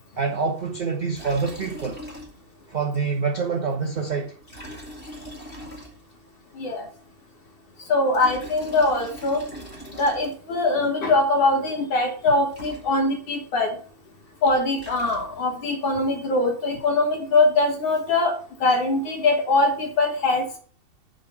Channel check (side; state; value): right; late; 2.7 ms